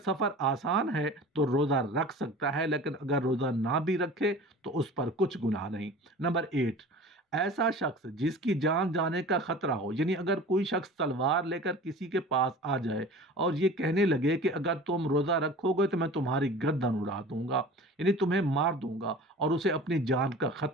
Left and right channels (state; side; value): normal; both; correlation 0.40